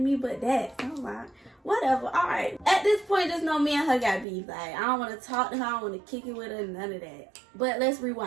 but that. So I'm like, whatever. All right. At this point, just know me and her got beef. Like, I don't want to talk to her. I don't want to kick it with her. None of that. But let's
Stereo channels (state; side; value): drops out; left; at 4.2 s